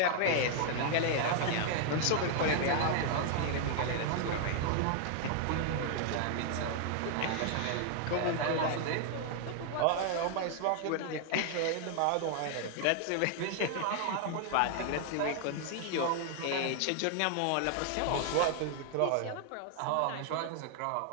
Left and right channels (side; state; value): both; different; correlation 0.00